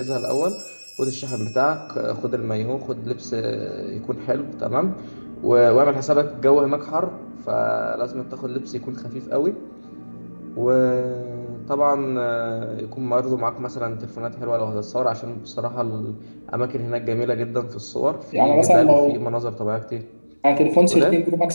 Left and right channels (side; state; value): both; inverted; correlation -1.00